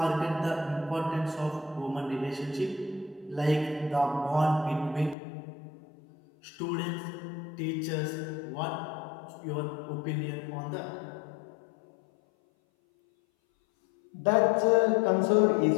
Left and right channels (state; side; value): drops out; right; at 5.2 s